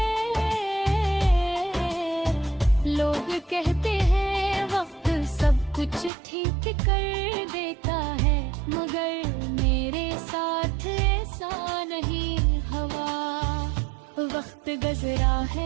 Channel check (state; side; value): drops out; left; at 6.1 s